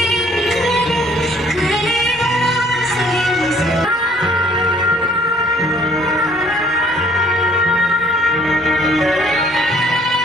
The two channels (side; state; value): both; normal; correlation 0.59